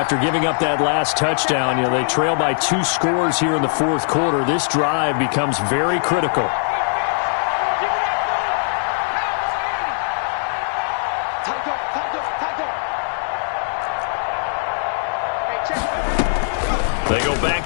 giving up that last touchdown, they trail by 2 scores here in the fourth quarter. This drive becomes very critical. They go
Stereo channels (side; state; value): right; silent; 65 dB below the other